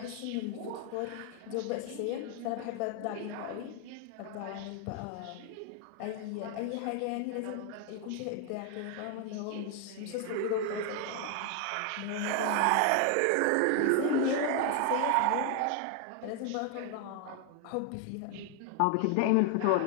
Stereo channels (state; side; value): different; both; correlation 0.00